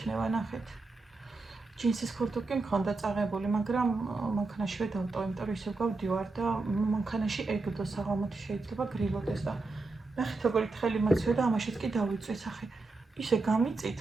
ნახეთ. ჯინსის ქურთუკი მქონდა წაღებული, მაგრამ მანქანაშივე დავტოვე, იმიტომ რომ ისევ გავდივარ და მანქანაში ეგდო საღამოთი შეიძლება გრილოდეს და ნახეთ როგორი თხელი მოცვია და ამაშიც კი დავიწვი სახე. ისე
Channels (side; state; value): left; quieter; 3.5 dB